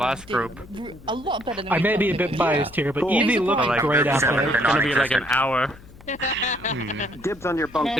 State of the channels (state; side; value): noise; left; hum, 21 dB below the sound